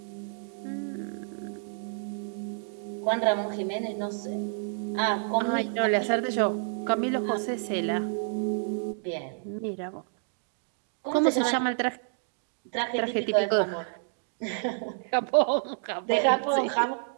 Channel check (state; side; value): silent; left; digital silence